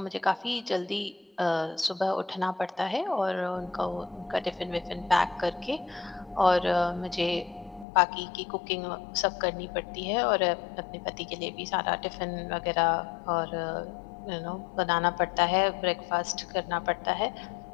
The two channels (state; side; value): drops out; right; at 7.9 s